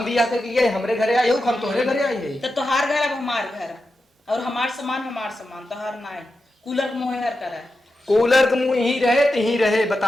भी आकर के हमरे घरे आए हो हम तोहरे घरे आए हैं तो तोहार घर अब हमार घर और हमार सामान तोहार ना है कूलर मोह हर करा कूलर के मुंह ही रहे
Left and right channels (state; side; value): normal; both; correlation 0.90